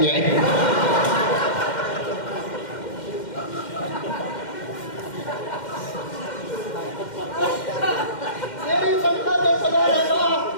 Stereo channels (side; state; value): right; late; 2.1 ms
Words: جائے. تیری تنخواہ 10,000 ہے نا,